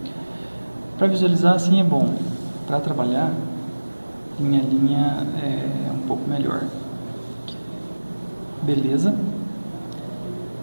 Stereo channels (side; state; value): both; inverted; correlation -1.00